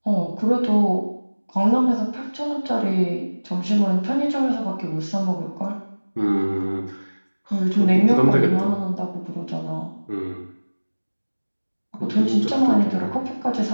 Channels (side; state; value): both; inverted; correlation -1.00